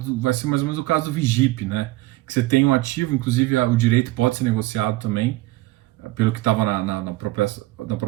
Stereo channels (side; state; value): left; quieter; 19.0 dB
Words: vai ser mais ou menos o caso do Vigip, né? Que você tem um ativo, inclusive o direito pode ser negociado também, pelo que estava na